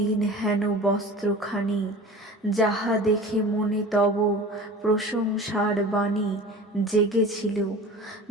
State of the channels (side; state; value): both; normal; correlation 0.38